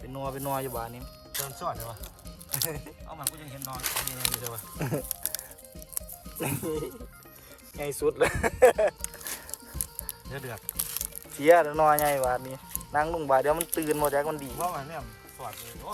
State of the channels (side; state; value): both; identical; correlation 1.00